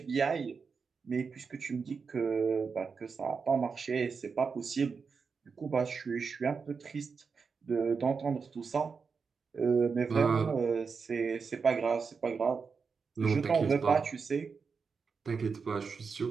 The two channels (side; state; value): left; quieter; 5.3 dB